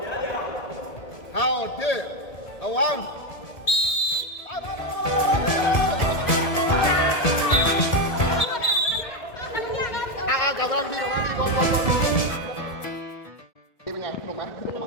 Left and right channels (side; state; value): right; late; 1.7 ms